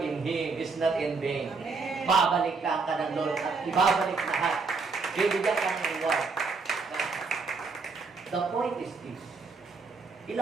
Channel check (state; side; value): quieter; left; 4.4 dB